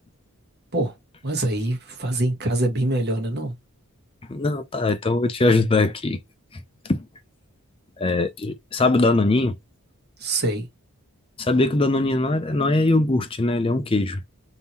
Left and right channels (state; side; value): normal; both; correlation 0.63